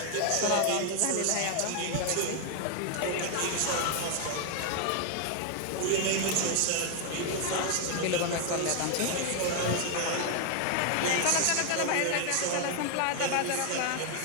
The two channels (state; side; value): different; both; correlation 0.01